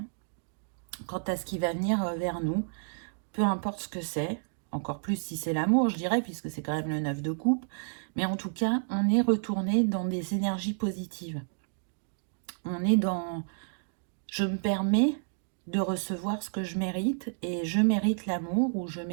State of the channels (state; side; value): silent; left; digital silence